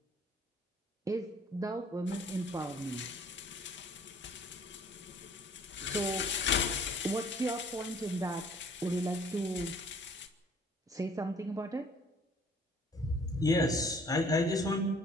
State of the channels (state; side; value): normal; both; correlation 0.56